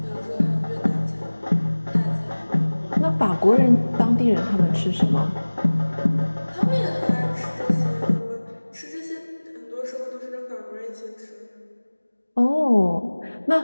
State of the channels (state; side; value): inverted; both; correlation -1.00